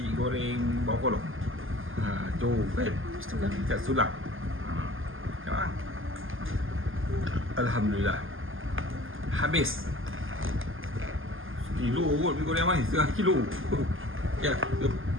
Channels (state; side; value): late; left; 0.59 ms